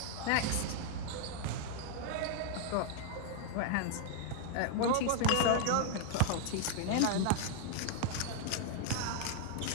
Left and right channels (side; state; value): both; different; correlation 0.00